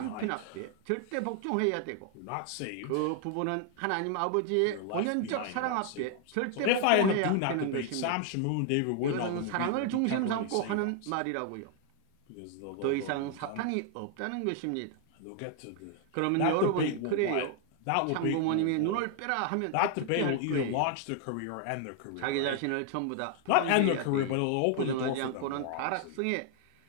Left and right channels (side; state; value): both; different; correlation 0.00